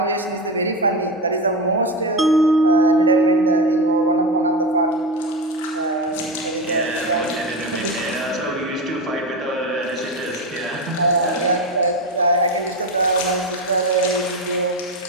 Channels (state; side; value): normal; both; correlation 0.17